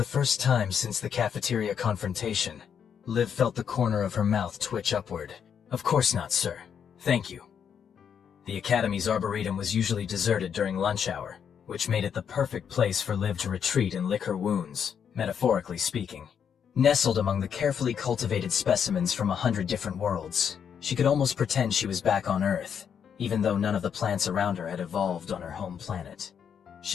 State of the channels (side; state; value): right; quieter; 7.8 dB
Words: first time since the cafeteria confrontation, Liv felt the corner of her mouth twitch upward. Of course not, sir. Thank you. The Academy's Arboretum was usually deserted during lunch hour, which made it the perfect place for Liv to retreat and lick her wounds, metaphorically speaking. Nestled among the carefully cultivated specimens from 100 different worlds, she could almost pretend she was back on Earth, even though none of the plants around her had evolved on her home planet.